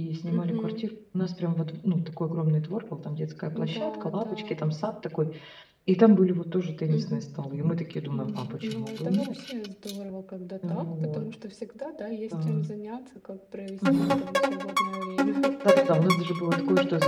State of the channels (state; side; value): identical; both; correlation 1.00